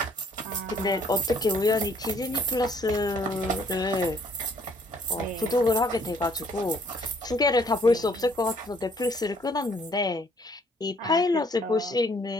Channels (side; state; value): both; normal; correlation 0.63